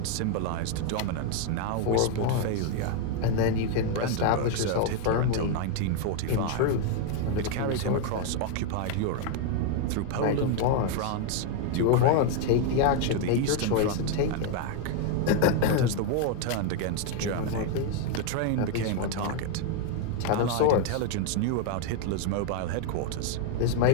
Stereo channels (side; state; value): both; different; correlation 0.01